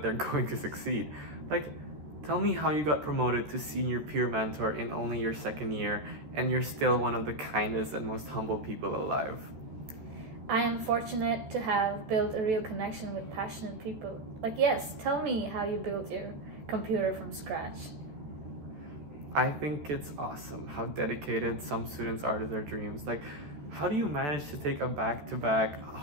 they're going to succeed. Like, tell me how you got promoted to senior peer mentor in only your second year, and you're still one of the kindest and most humble people alive. I am fortunate to have built a real connection with passionate people. Like, yes, tell me how you built your computer from scratch. I think it's awesome how dedicated some students are to their dreams. Like, how do you manage to take a back-to-back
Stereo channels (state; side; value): late; left; 13 ms